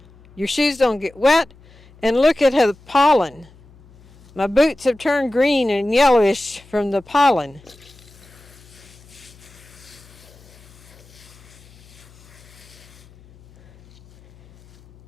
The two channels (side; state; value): left; noise; hum, 25 dB below the sound